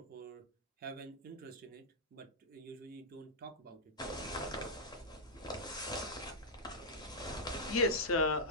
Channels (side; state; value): both; normal; correlation -0.06